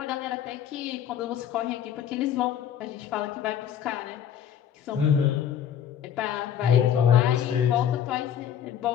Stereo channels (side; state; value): right; quieter; 9.3 dB